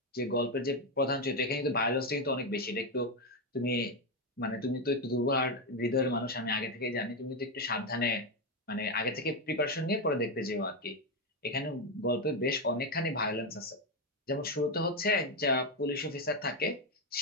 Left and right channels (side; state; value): both; normal; correlation 0.07